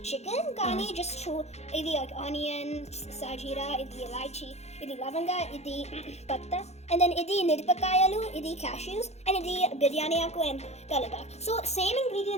chicken కానీ just ఇది like onion, sajira, ఇది elaichi, ఇది లవంగా, ఇది పత్తా, and then ఇది మిరపకాయలు, ఇది cashews, and ఇది బిర్యానీ ఆకు and కలగా. So same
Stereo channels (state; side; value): late; right; 0.31 ms